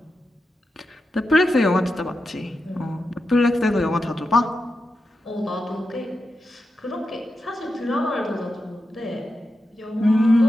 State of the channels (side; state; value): both; normal; correlation 0.89